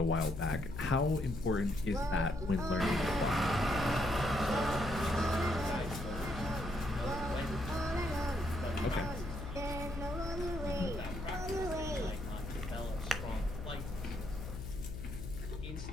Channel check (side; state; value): left; noise; hum, 7 dB below the sound